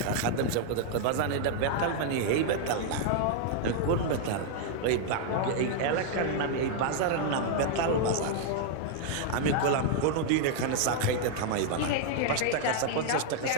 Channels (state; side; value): different; both; correlation -0.01